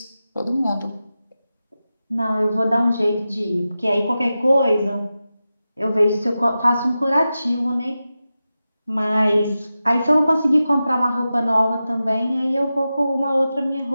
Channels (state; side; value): inverted; both; correlation -0.93